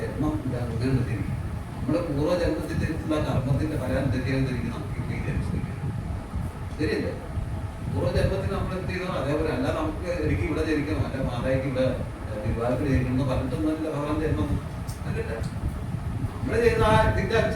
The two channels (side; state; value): both; identical; correlation 1.00